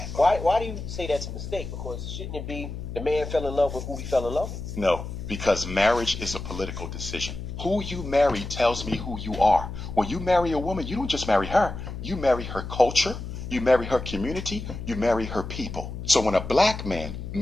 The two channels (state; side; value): noise; left; hum, 8 dB below the sound